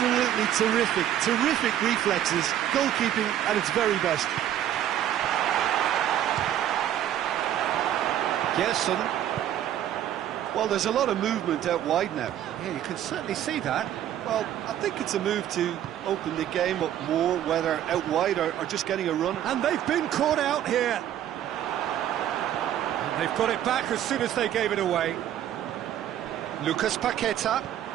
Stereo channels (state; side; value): quieter; left; 11.2 dB